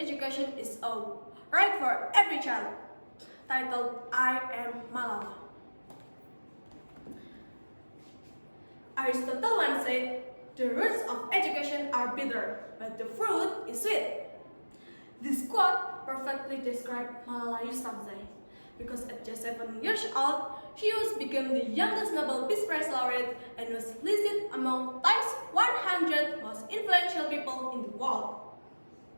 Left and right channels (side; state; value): both; inverted; correlation -1.00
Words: is a right for every child, titled "I Am Malala." Aristotle once said, "The roots of education are bitter, but the fruit is sweet." This quote perfectly describes Malala Yousafzai, because at just 7 years old, she became the youngest Nobel Peace Prize laureate and was listed among Time's 100 100 most influential people in the world.